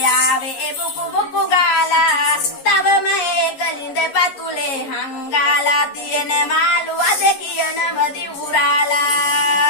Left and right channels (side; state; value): right; late; 11 ms